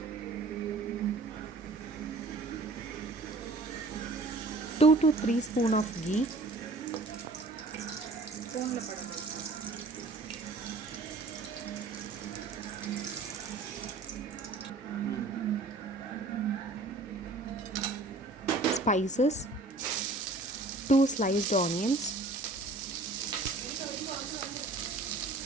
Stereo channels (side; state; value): left; quieter; 3.3 dB